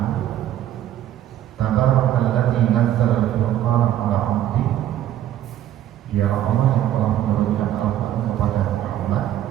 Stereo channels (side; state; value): left; quieter; 12.1 dB